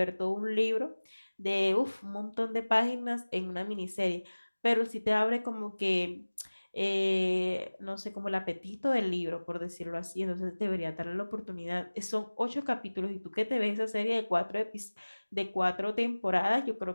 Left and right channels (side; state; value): both; inverted; correlation -1.00